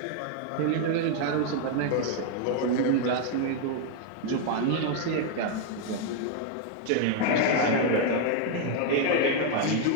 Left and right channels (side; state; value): both; different; correlation 0.00